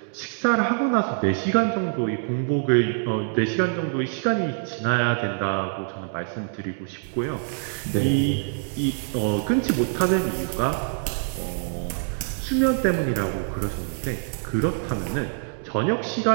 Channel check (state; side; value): silent; left; digital silence